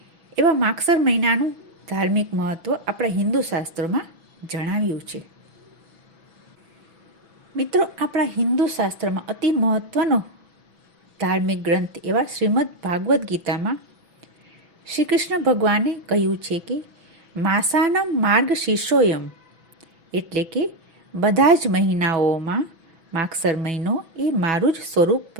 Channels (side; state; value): left; late; 6.1 ms